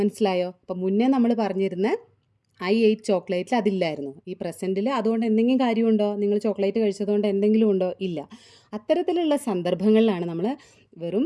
അപ്പോൾ മുന്നേ നമ്മൾ പറഞ്ഞിരുന്ന ഐ എയ്റ്റ് ചോക്ലേറ്റിൽ അതില്ലായിരുന്നു. ഈ പ്രസൻറ്റിൽ അതുകൊണ്ട് എന്തെങ്കിലും കാര്യമുണ്ടോ? നിങ്ങൾ ചോക്ലേറ്റ് കഴിച്ചതുകൊണ്ട് എന്തെങ്കിലും ഉണ്ടോ? ഇല്ല. അത്തരത്തിലുള്ള സന്ദർഭങ്ങളിലാണ് നമ്മൾ വെറും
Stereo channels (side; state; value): both; identical; correlation 1.00